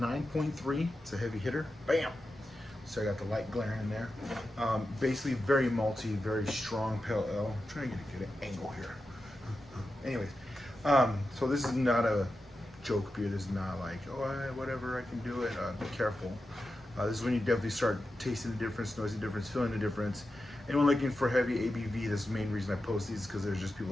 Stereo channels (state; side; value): normal; both; correlation 0.90